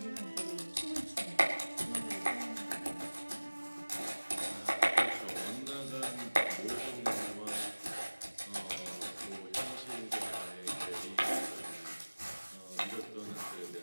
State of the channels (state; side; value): inverted; both; correlation -1.00